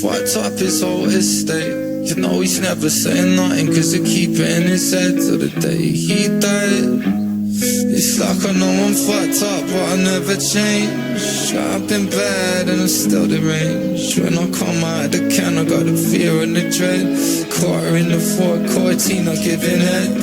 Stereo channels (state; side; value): identical; both; correlation 1.00